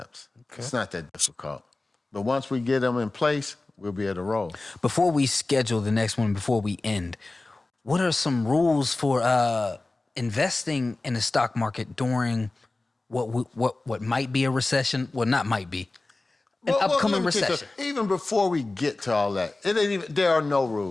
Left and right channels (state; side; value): quieter; right; 3.1 dB